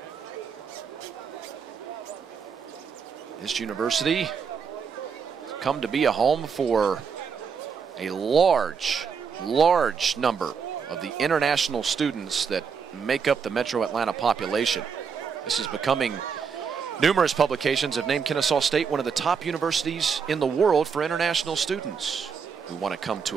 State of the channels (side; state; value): left; quieter; 6.2 dB